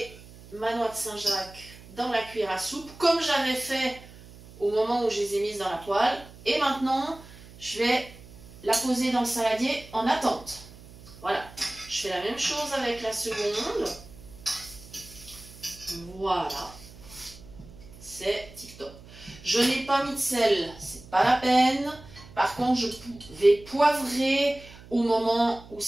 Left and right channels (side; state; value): right; noise; hum, 19 dB below the sound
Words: ma noix de Saint-Jacques dans la cuillère à soupe comme j'avais fait au moment où je les ai mises dans la poêle. Et maintenant, je vais la poser dans le saladier en attente. Voilà. Je fais la même chose avec la seconde. Voilà. C'est tip top. Je n'ai pas mis de sel, c'est pas la peine. Par contre, je vais poivrer au moment où